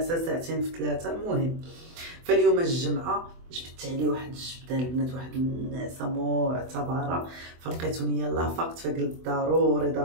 ساعتين في 3. المهم فاليوم الجمعه جبت عليه واحد الجبده البنات، واحد النعسه معتبره، فلقيتوني يلاه فقت، فقلت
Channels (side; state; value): left; late; 24 ms